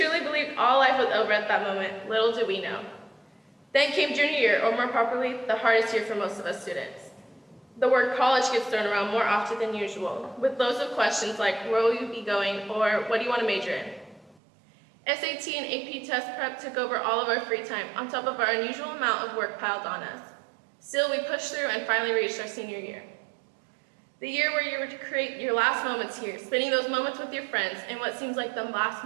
believed all life was over at that moment, little did we know. Then came junior year, or more properly, the hardest year for most of us students. The word college gets thrown around more often than usual, with loads of questions like, where will you be going, or what do you want to major in? SAT and AP test prep took over all of our free time, on top of our unusual amount of work piled on us. Still, we pushed through and finally reached our senior year. The year where you were to create your last moments here, spending those moments with your friends in what seems like the last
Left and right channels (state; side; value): drops out; left; at 14.4 s